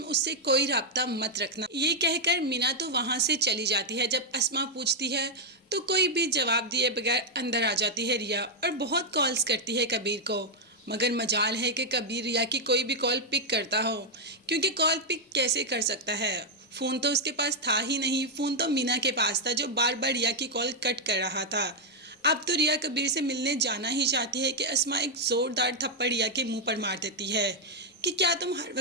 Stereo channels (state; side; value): normal; both; correlation -0.01